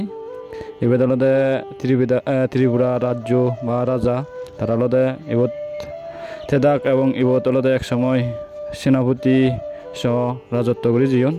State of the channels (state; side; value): identical; both; correlation 1.00